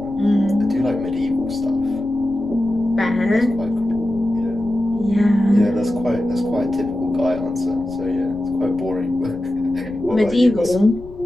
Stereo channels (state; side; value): noise; left; rumble, 18 dB below the sound